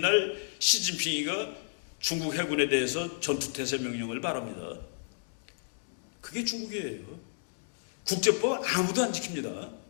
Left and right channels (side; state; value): right; silent; digital silence